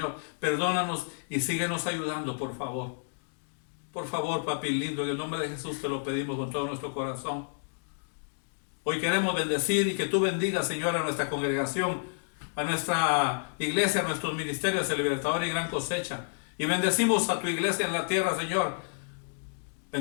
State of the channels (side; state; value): right; silent; digital silence